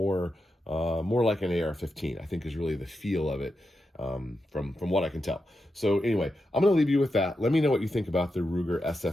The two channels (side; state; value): both; normal; correlation 0.87